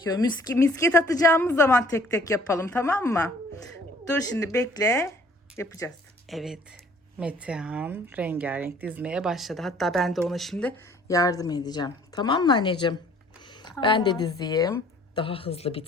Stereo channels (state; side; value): normal; both; correlation 0.56